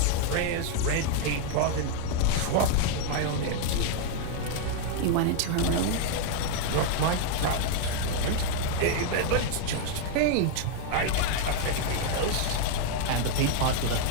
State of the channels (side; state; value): both; different; correlation 0.00